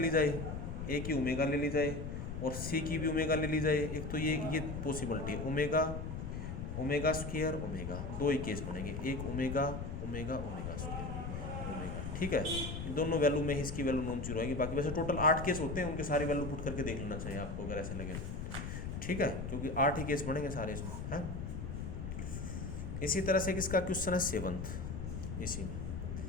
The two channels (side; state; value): left; noise; rumble, 5 dB below the sound